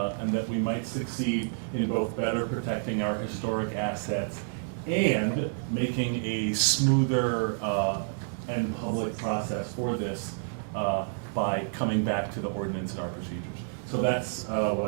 and that we might succeed in both better protecting our historic assets and making a smoother and public process for this by coming back to the ordinance and our procedures. So that's what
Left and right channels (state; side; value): silent; left; digital silence